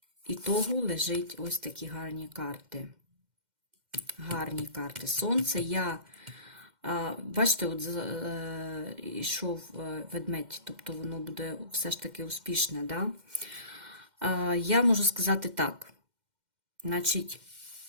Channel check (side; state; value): left; late; 2.1 ms